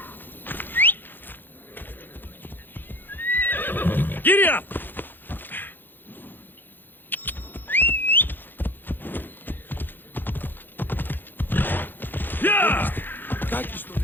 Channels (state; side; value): late; right; 0.093 ms